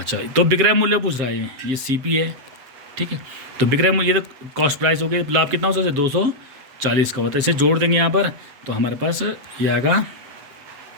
तो विक्रय मूल्य पूछ रहा है ये CP है, ठीक है। तो विक्रय मूल्य ये तो कॉस्ट प्राइस हो गई, लाभ कितना हो सकता है 240 का होता है, इसे जोड़ देंगे यहाँ पर तो हमारे पास ये आएगा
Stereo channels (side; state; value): left; late; 7.6 ms